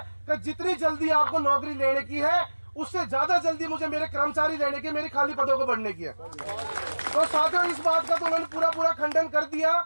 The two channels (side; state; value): both; inverted; correlation -1.00